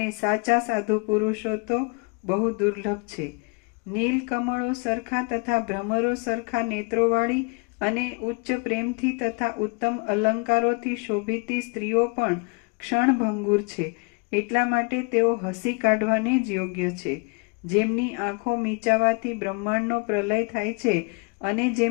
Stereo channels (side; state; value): right; quieter; 32.6 dB